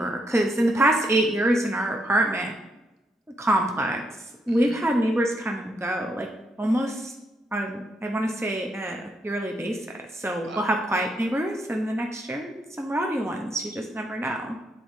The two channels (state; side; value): normal; both; correlation 0.78